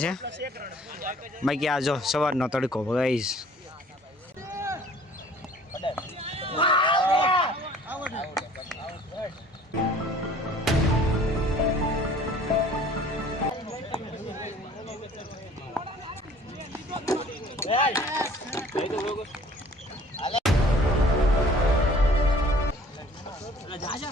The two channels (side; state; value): both; normal; correlation 0.52